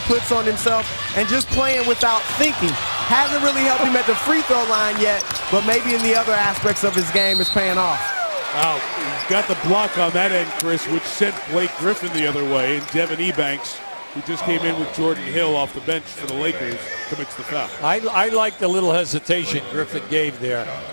on himself, and just playing without thinking. Hasn't really helped him at the free throw line yet, but maybe in the other aspects of his game is paying off. Wow, he's got the block on that end, Chris, which sent Blake Griffin the other way, and Devin Ebanks, who just came in with Jordan Hill off the bench for the Lakers, commits the foul. I like the little hesitation Griffin gave there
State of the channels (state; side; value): inverted; both; correlation -1.00